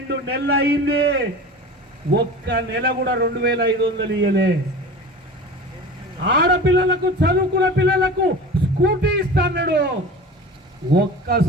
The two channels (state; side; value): normal; both; correlation 0.35